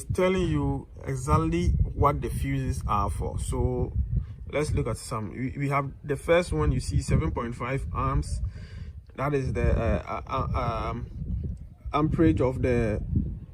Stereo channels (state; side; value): identical; both; correlation 1.00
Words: telling you exactly what the fuses are for. So let's look at some. We have the first one. You see 7.5 amps. That is the amperage of the